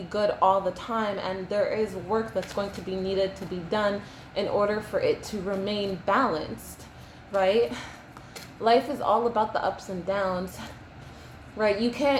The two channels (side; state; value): both; identical; correlation 1.00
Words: good all the time. And there is work that's going to be needed to be done in order for it to remain balanced, right? Life is all about the ups and downs, right? You